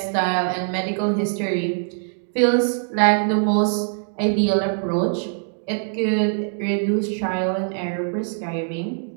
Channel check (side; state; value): left; silent; digital silence